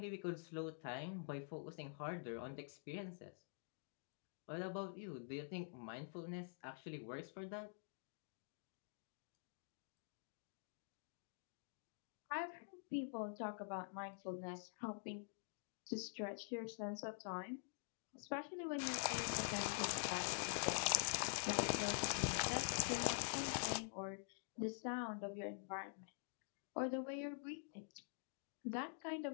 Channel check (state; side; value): silent; right; digital silence